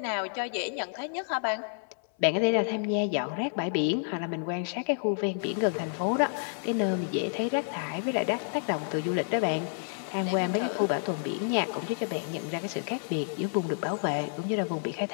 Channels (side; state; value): right; silent; 58 dB below the other